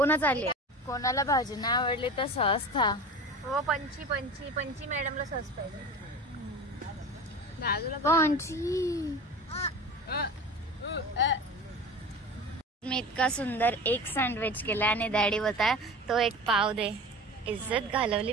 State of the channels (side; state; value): both; normal; correlation 0.34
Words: आली. कोणाला भाजी नाही आवडली तर सहज खा. हो पंची मॅडमला सस पाहिजे. पंची मी इतका सुंदर एक सँडविच केला आणि डॅडी होता तो एक पाव दे. इज्जत